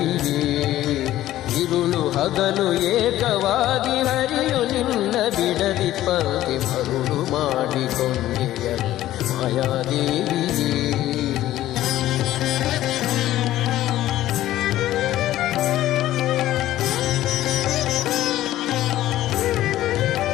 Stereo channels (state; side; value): quieter; right; 14.2 dB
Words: ಇರುಳು ಹಗಲು ಏಕವಾಗಿ ಹರಿಯು ನಿನ್ನ ಬಿಡದಿ ಪಂಕ್ತಿ ಮರುಳು ಮಾಡಿಕೊಂಡೆಯಲ್ಲಿ ಮಾಯಾದೇವಿಯೇ.